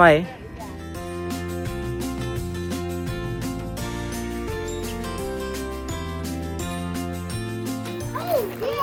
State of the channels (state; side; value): identical; both; correlation 1.00